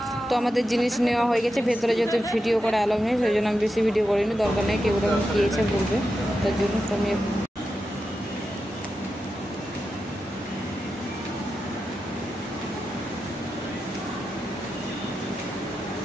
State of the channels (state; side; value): normal; both; correlation 0.89